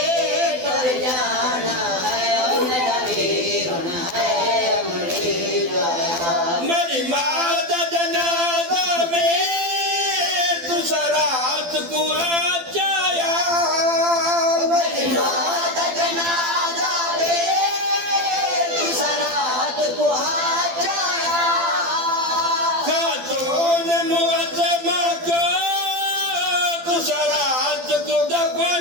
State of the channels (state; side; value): late; left; 12 ms